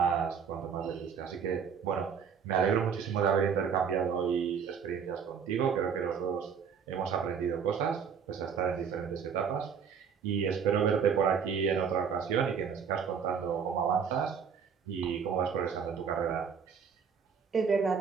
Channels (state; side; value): quieter; left; 6.8 dB